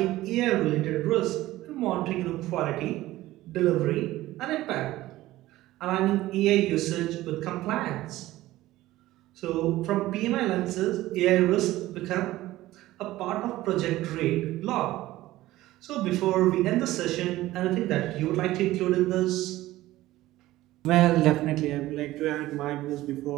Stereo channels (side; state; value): left; quieter; 16.4 dB